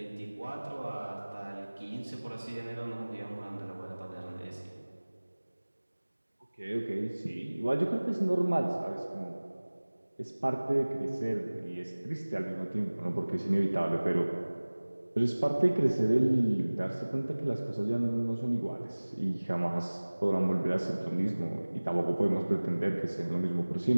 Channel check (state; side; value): inverted; both; correlation -1.00